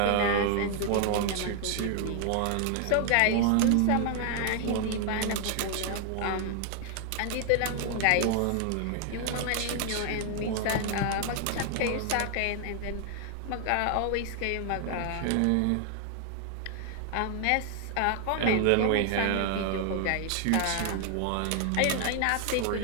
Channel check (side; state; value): both; different; correlation 0.00